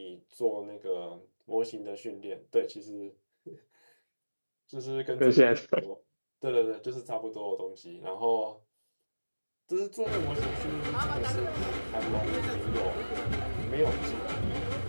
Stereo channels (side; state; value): both; inverted; correlation -1.00